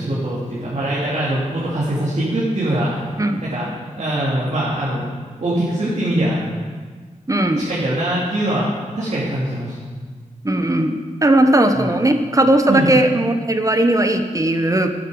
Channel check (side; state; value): both; normal; correlation 0.74